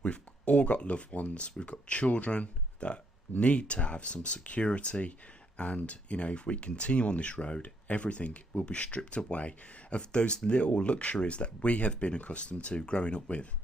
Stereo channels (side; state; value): both; normal; correlation 0.73